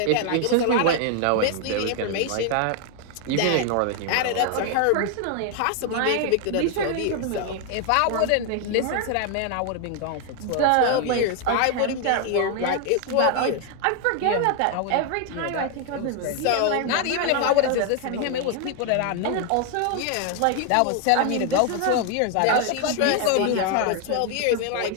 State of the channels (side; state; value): both; different; correlation 0.00